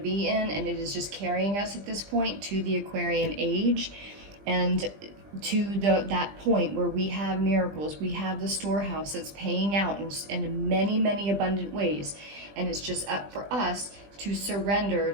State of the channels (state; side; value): late; left; 20 ms